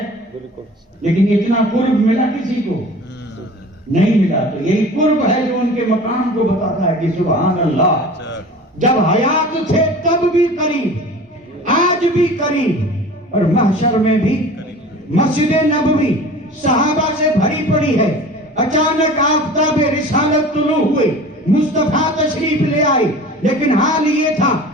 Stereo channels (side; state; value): both; normal; correlation 0.40